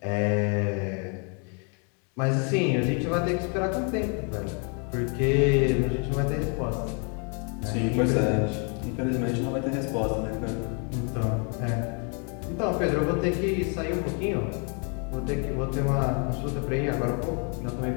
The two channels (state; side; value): quieter; right; 38.2 dB